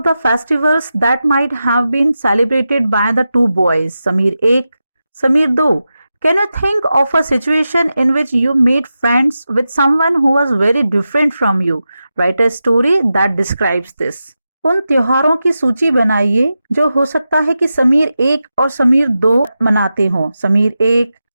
the festivals that might have been celebrated by the two boys, Samir Ek, Samir Do. Can you think of a situation in which you made friends with someone who was very different from you? Write a story that describes this. उन त्योहारों की सूची बनाइए जो हो सकता है कि समीर एक और समीर दो मनाते हों। समीर एक,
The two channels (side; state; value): both; inverted; correlation -0.91